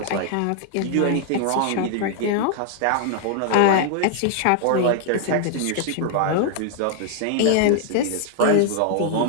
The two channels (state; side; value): different; both; correlation 0.00